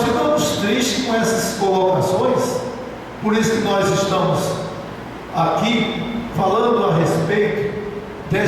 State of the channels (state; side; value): identical; both; correlation 1.00